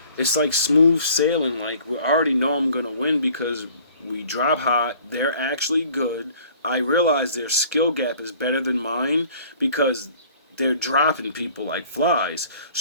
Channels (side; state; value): both; inverted; correlation -0.52